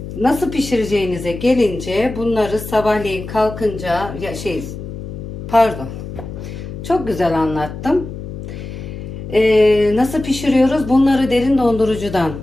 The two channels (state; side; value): noise; left; hum, 10 dB below the sound